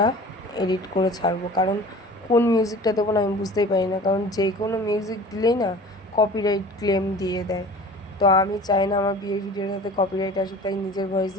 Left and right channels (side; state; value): both; normal; correlation 0.42